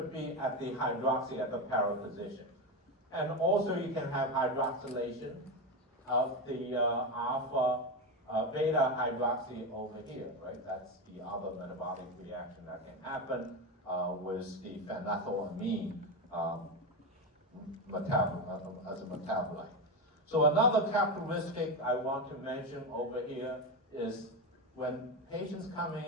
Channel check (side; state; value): both; normal; correlation 0.14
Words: be at the hydroxy at the para position. And also you can have hydroxylation of the alpha beta hydroxy over here, right? That's the other metabolic reaction that can happen with the phenethylamine as a metabolite. So another characteristic I want to mention over here is when patients coming